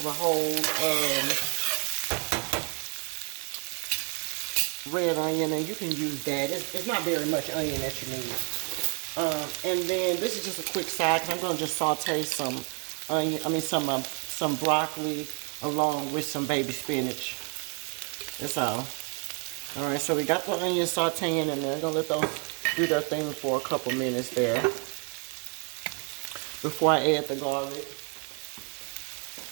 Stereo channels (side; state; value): left; quieter; 37.6 dB